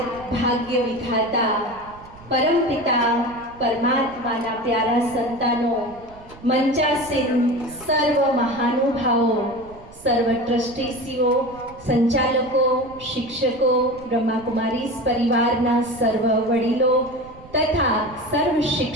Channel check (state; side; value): noise; right; rumble, 21 dB below the sound